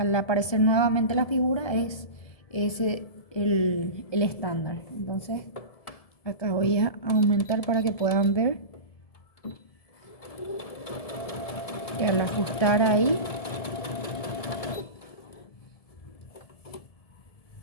aparecer nuevamente la figura, es ese el estándar. Entonces acá voy a aumentar para que puedan ver. Y al ajustar ahí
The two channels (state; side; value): late; right; 1.7 ms